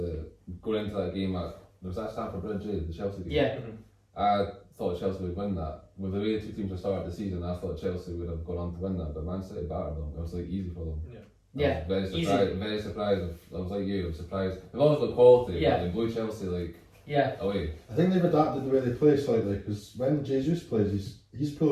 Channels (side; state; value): both; identical; correlation 1.00